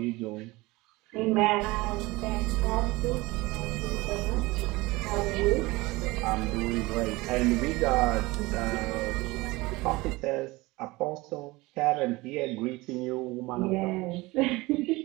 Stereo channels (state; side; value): quieter; left; 21.6 dB